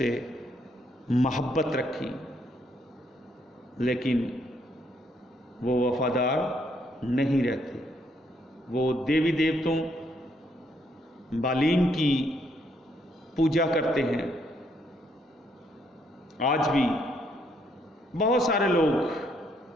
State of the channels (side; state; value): both; normal; correlation 0.72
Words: محبت رکھی، لیکن وہ وفادار نہیں رہتے۔ وہ دیوی دیوتوں بالیم کی پوجا کرتے ہیں۔ آج بھی بہت سارے لوگ